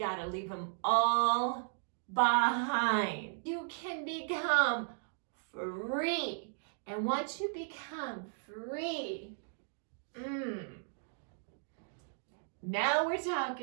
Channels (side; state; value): left; silent; digital silence